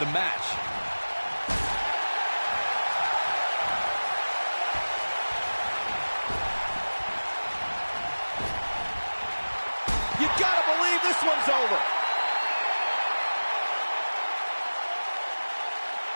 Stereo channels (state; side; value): inverted; both; correlation -1.00